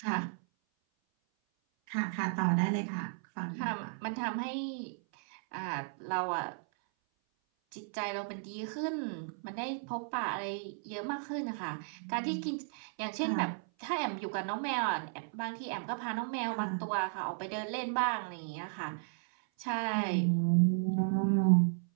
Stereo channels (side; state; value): left; silent; 55 dB below the other